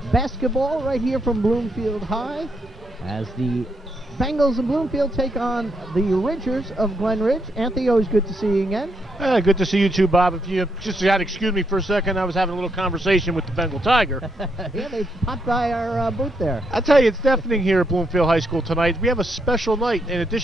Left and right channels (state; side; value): normal; both; correlation 0.78